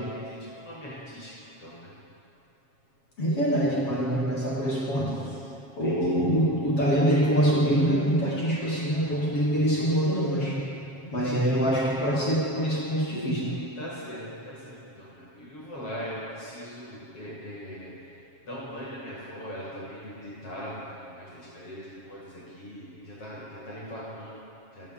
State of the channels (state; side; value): late; right; 7.4 ms